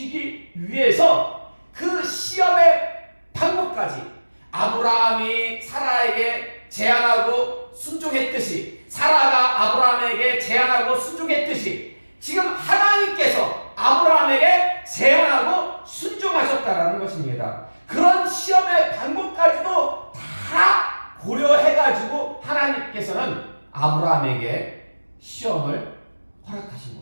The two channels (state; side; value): inverted; both; correlation -1.00